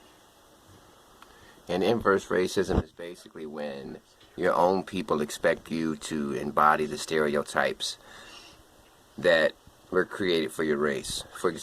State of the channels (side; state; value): both; identical; correlation 1.00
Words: And inverse racism is basically when your own people expect you to embody the stereotypes that were created for your race. For